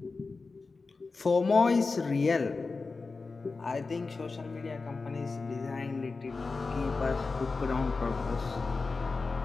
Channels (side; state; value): right; quieter; 4.1 dB